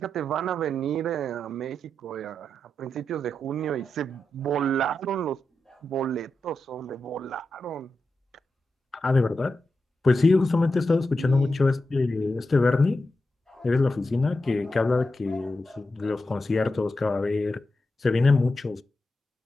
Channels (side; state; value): both; normal; correlation 0.89